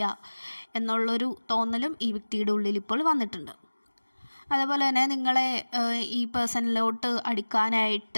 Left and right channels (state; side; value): inverted; both; correlation -1.00